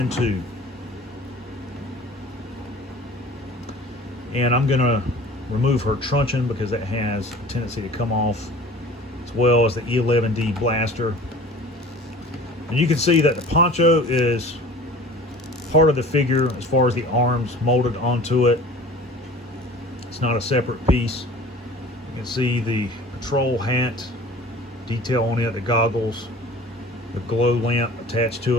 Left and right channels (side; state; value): both; normal; correlation 0.44